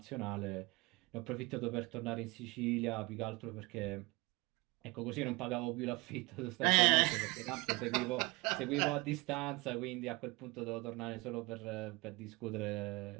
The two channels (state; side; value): quieter; left; 24.3 dB